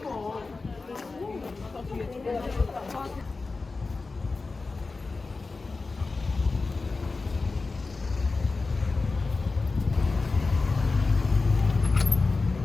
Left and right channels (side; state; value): right; quieter; 3.9 dB